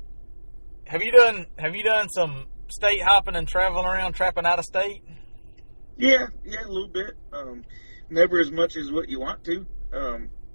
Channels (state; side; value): inverted; both; correlation -1.00